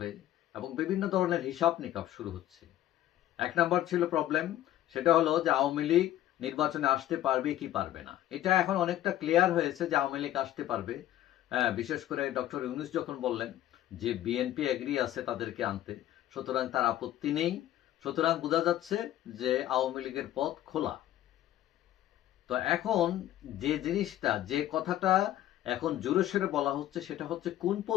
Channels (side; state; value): right; quieter; 13.2 dB